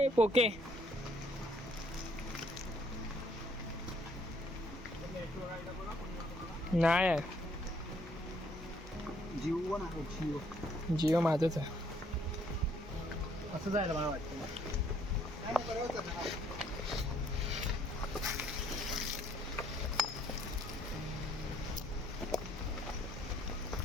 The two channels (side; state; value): both; normal; correlation 0.65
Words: पोके नाही आहे. जिओ माझंच आहे. असं जायला मला वाटतं.